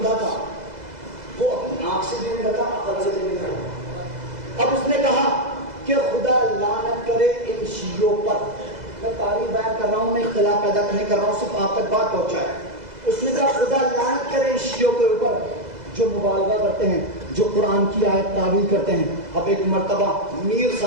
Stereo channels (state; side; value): late; left; 2.0 ms